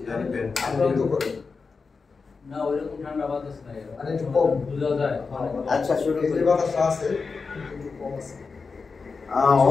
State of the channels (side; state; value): right; quieter; 4.7 dB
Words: আমরা তো করি। না ওইরকম ঠান্ডা বাতাস নাই। আরে একটু কম বুঝা যায়। আচ্ছা শুরু এই করি। যে বাতাস আছে একটু কম আছে।